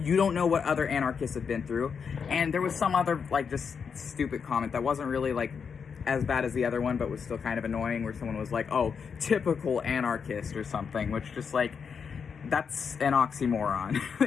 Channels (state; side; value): quieter; right; 6.3 dB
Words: don't know what other anarchists have been through. And there was some other, like, just stupid comment that wasn't really, like, as bad as the other one, but was still kind of annoying, where someone was like, oh, typical anarchist or something, which just, like, that's an oxymoron